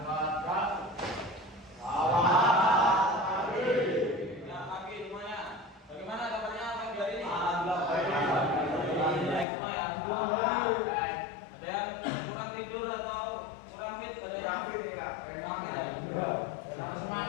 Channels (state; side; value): drops out; right; at 9.5 s